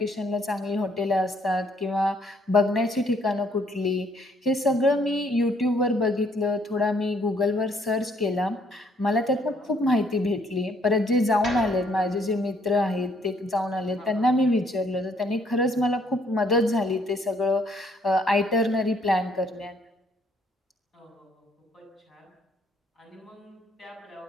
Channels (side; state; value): both; normal; correlation 0.66